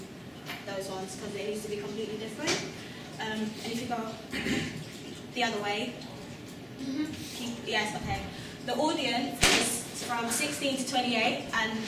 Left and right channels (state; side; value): identical; both; correlation 1.00